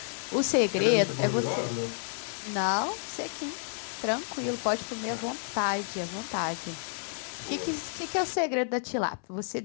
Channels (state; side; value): silent; right; 58 dB below the other